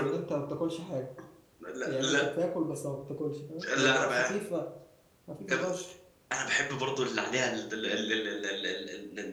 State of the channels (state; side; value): identical; both; correlation 1.00